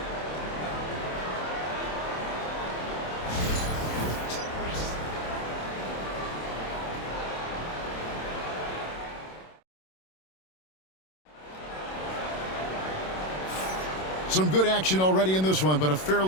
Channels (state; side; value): late; right; 27 ms